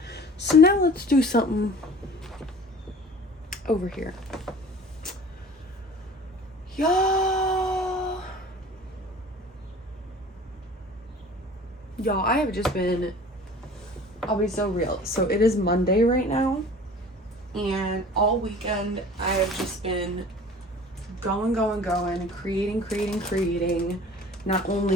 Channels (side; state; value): both; normal; correlation 0.44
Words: So now let's do something over here. Y'all, I have just been, I'll be so real. So it is Monday right now, and all weekend I have just been going, creating, not